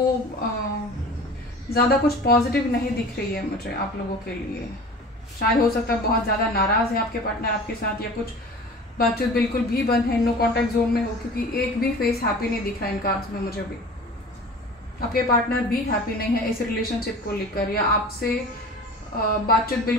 ज़्यादा कुछ पॉजिटिव नहीं दिख रही है मुझे आप लोगों के लिए। शायद हो सकता है बहुत ज़्यादा नाराज़ है आपके पार्टनर आपके साथ, या कुछ बातचीत बिल्कुल भी बंद है, नो कॉन्टैक्ट जोन में हो, क्योंकि एक भी फेस हैप्पी नहीं दिख रहा है इन कार्ड्स में मुझे भी। आपके पार्टनर भी हैप्पी नहीं है इस रिलेशनशिप को लेकर, या आपसे बातचीत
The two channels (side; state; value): both; normal; correlation 0.40